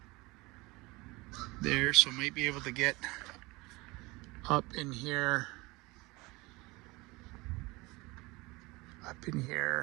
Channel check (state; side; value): quieter; left; 23.3 dB